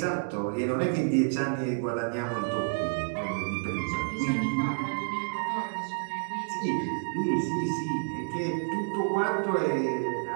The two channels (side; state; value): left; silent; digital silence